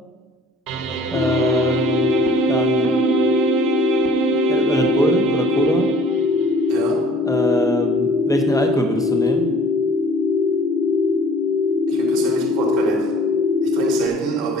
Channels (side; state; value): both; normal; correlation 0.53